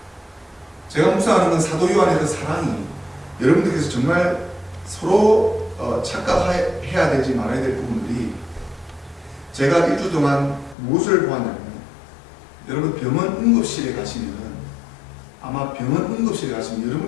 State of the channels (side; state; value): right; drops out; at 10.8 s